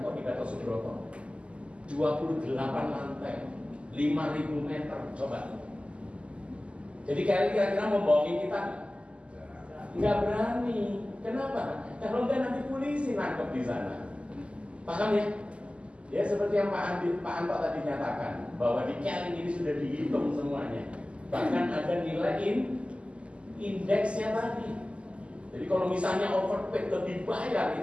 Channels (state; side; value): late; left; 0.056 ms